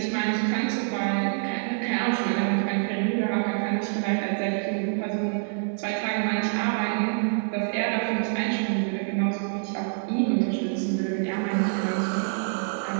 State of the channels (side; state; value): left; silent; digital silence